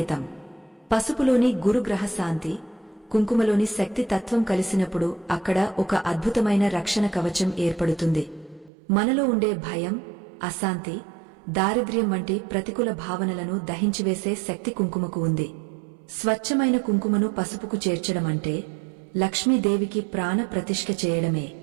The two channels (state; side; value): drops out; left; at 8.7 s